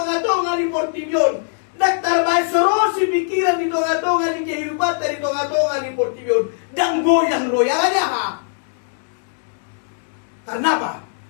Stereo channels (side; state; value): right; silent; digital silence